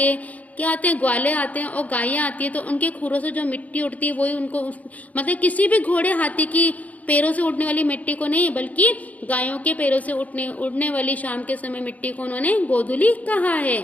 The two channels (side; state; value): right; late; 0.073 ms